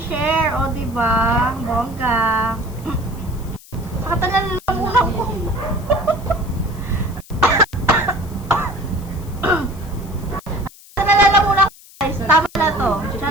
O, diba? Bongga. Saka nalalamunan ko. Nalalamunan ko, guys. Tama na to.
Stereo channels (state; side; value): noise; left; hiss, 22 dB below the sound